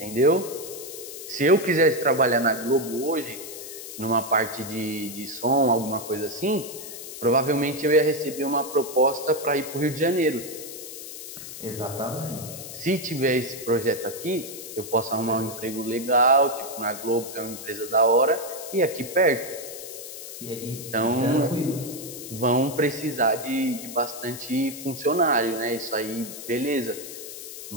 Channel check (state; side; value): noise; left; hiss, 11 dB below the sound